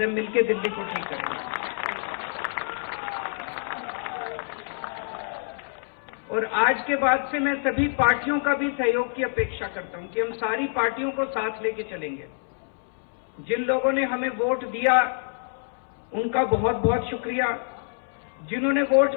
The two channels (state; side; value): silent; right; 60 dB below the other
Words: हैं, मिलके दिल्ली को ठीक करेंगे। और आज के बाद से मैं सभी पार्टियों का भी सहयोग की अपेक्षा करता हूं कि हम सारी पार्टियों को साथ लेके चलेंगे। जिन लोगों ने हमें वोट दिया उनका बहुत बहुत शुक्रिया, जिन्होंने वोट